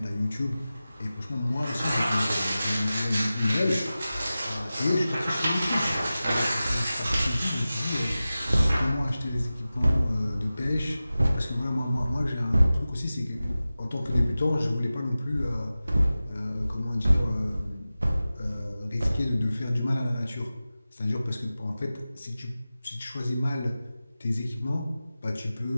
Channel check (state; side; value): inverted; both; correlation -0.96